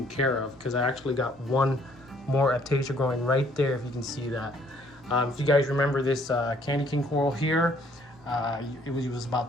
care of, because I actually got one more aptasia growing right there, if you can see that. If you guys remember this candy king coral here, it was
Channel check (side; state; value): both; normal; correlation 0.63